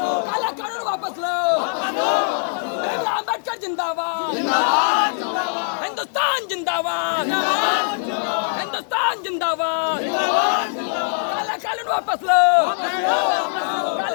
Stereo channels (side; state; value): right; silent; digital silence